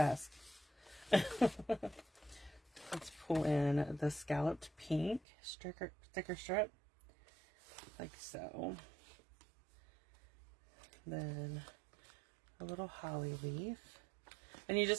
Let's pull in the scalloped pink sticker strip, like so. Then a little holly leaf. And you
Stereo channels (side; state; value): left; drops out; at 5.2 s